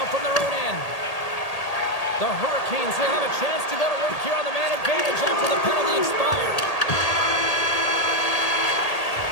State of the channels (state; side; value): late; right; 1.8 ms